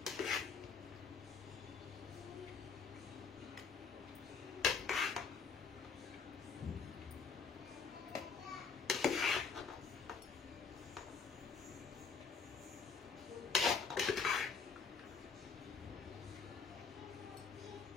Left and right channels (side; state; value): right; quieter; 5.4 dB